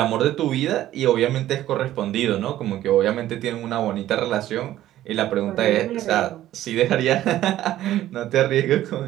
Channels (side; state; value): left; quieter; 13.5 dB